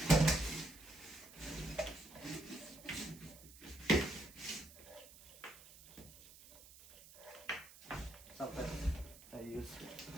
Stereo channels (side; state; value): right; noise; hiss, 19 dB below the sound